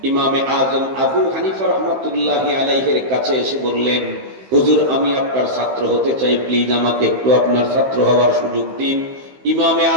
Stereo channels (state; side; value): late; left; 15 ms